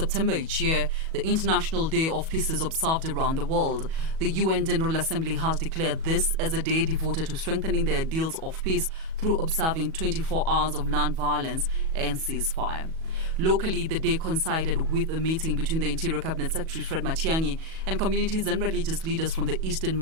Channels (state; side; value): late; left; 37 ms